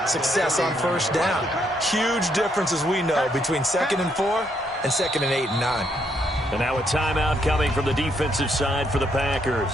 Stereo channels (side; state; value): both; normal; correlation 0.74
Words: success on first down. Huge difference, as we know, between 2nd and 4 and 2nd and 8 and 9. And now a timeout coming from the defensive side for the